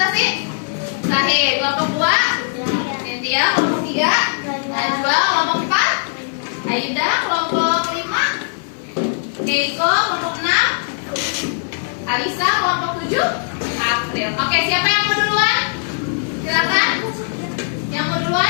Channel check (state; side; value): silent; right; 55 dB below the other